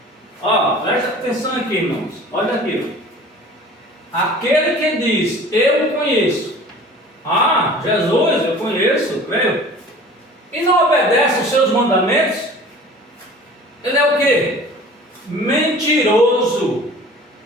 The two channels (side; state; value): both; normal; correlation 0.44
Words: presta atenção aqui, irmãos, olha aqui, aquele que diz, eu conheço, Jesus, eu conheço, creio, e não obedece os seus mandamentos, ele é o quê? Mentiroso.